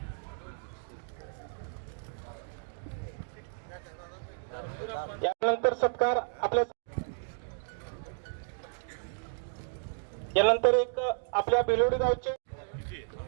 यानंतर सत्कार आपल्या यानंतर एक आपल्या बिलोडी गावचे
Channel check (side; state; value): left; silent; digital silence